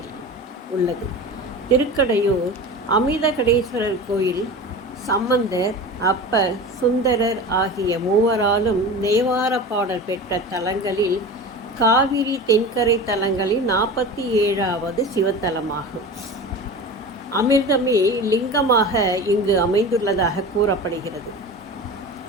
உள்ளது. திருக்கடையூர் அமிர்தகடேஸ்வரர் கோயில் சம்பந்தர், அப்பர், சுந்தரர் ஆகிய மூவராலும் தேவார பாடல் பெற்ற தலங்களில் காவிரி தென்கரை தலங்களில் 47வது சிவத்தலமாகும். அமிர்தமே லிங்கமாக இங்கு அமைந்துள்ளதாக கூறப்படுகிறது.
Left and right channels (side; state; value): both; normal; correlation 0.32